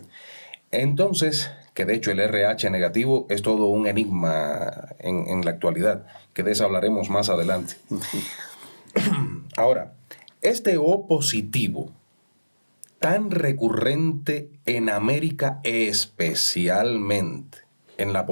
Entonces, que de hecho el RH negativo es todo un enigma en la actualidad, que de eso hablaremos más adelante. Ahora, este O positivo, tan recurrente en América, especialmente en la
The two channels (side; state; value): both; inverted; correlation -1.00